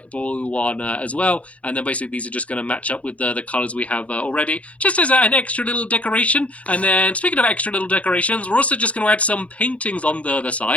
blue one as well. And then basically these are just going to match up with the colors we have already, just as an extra little decoration. And then speaking of extra little decorations, we're also just going to add some paintings on the other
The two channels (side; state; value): right; late; 0.065 ms